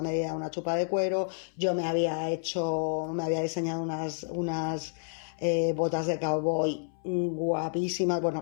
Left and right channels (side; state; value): right; silent; 58 dB below the other